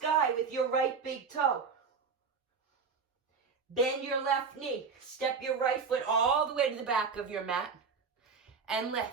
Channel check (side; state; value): left; quieter; 5.4 dB